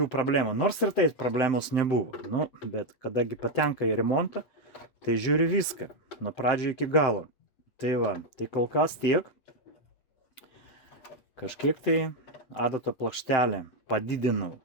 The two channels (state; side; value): late; right; 7.7 ms